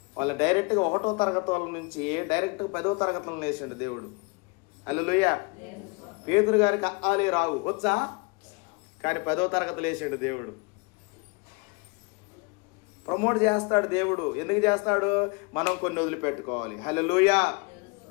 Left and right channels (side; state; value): right; quieter; 29.7 dB